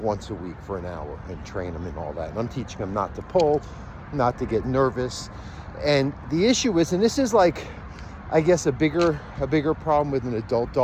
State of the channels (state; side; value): identical; both; correlation 1.00